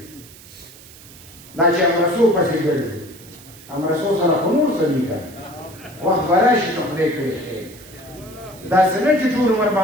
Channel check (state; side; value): noise; right; hiss, 20 dB below the sound